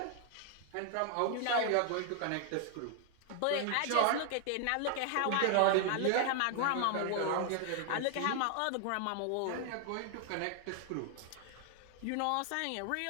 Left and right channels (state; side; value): different; both; correlation 0.00